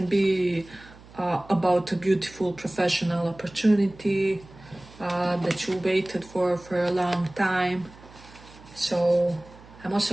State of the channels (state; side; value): noise; right; hum, 22 dB below the sound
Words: be about a beautiful professional opportunity that you waited for a long time. So I'm